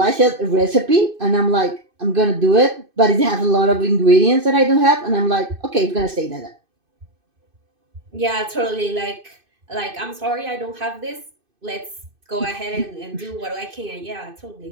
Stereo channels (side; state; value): left; late; 2.5 ms